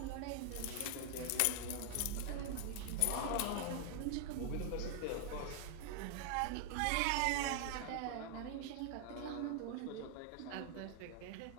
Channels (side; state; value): both; different; correlation 0.00